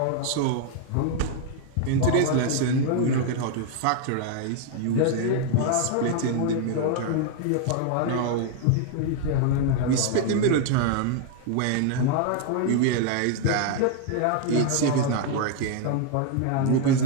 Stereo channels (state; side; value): different; both; correlation 0.00